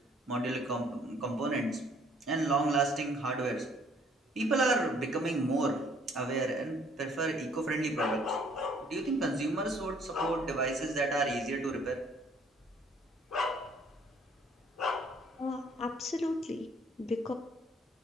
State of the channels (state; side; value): normal; both; correlation 0.61